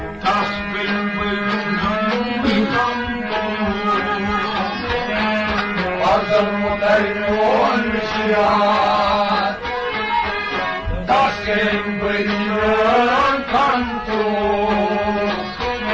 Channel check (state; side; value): identical; both; correlation 1.00